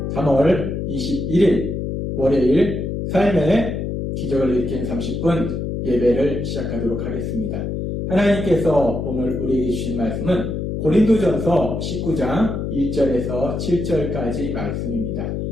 3월 21일 월요일 삶의 기적을 일으키는 30분 예배를 시작하도록 하겠습니다. 하나님께서 오늘 우리에게 주신 말씀은 고린도전서 19장 1절에서 7절까지 말씀입니다.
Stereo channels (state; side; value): noise; left; hum, 3 dB below the sound